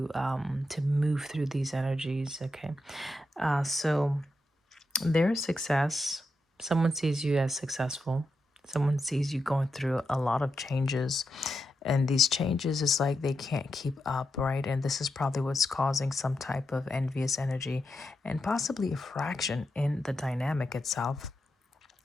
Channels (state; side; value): normal; both; correlation 0.86